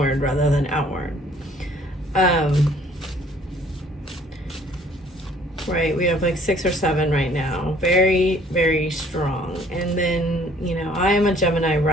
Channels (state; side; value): normal; both; correlation 0.58